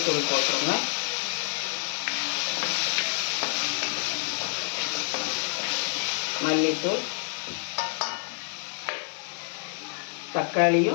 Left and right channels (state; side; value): silent; right; 59 dB below the other